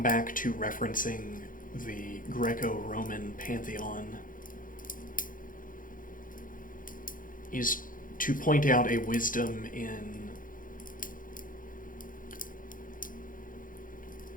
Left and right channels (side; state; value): right; late; 0.40 ms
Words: back to referencing the Greco-Roman pantheon is to point out a wisdom in